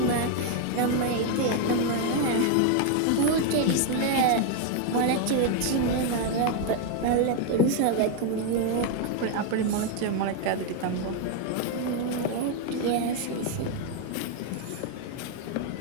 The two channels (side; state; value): both; different; correlation 0.01